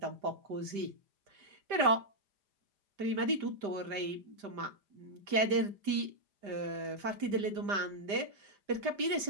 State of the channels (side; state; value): left; late; 5.0 ms